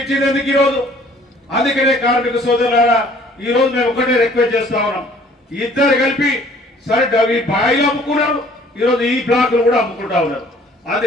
ఎందుకు ఈరోజు? అందుకనే కార్మిక సోదరులారా ఈ రోజు మేము ఒకటే రిక్వెస్ట్ చేస్తా ఉన్నాం, ఇద్దరు కలిపి సరే ఈ బాయిలు అమ్ముకున్నారు, ఈరోజు ఈ బ్లాక్లు కూడా అమ్ముకుంటా ఉన్నారు.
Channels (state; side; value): normal; both; correlation 0.56